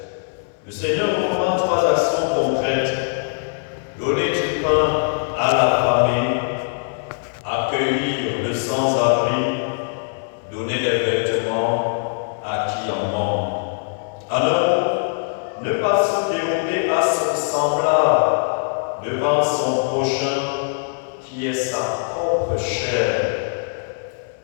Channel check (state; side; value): silent; right; 59 dB below the other